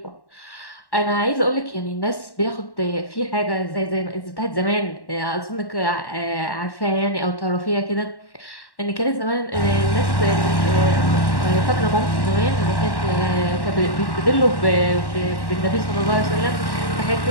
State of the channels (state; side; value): late; right; 1.1 ms